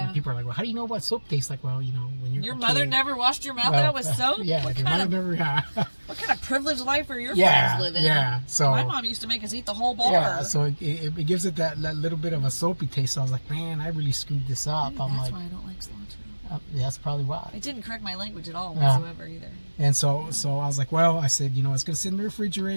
And people are like, well, how do you know what soap tastes like? Well, when you're your a mother kid, never washed your mouth out with soap. Yeah, what your kind mother of, never. Yeah. What kind of privileged life are your Yeah, friends living? yeah. So my mom used to make us eat the whole bar. Yeah, so it gives it that little bit of a soapy taste. So I was like, man, I really screwed this up. Maybe that's why I don't like cilantro. That's probably why. It didn't correct my language at all whatsoever either. And so I was like, well, I said, it's gonna sit in the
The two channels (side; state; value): both; inverted; correlation -1.00